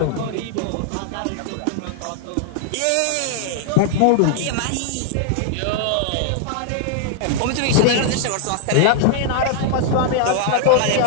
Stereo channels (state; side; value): different; both; correlation -0.01